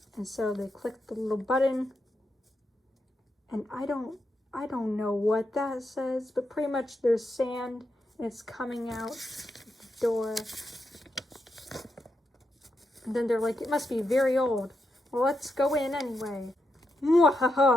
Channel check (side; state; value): both; normal; correlation 0.84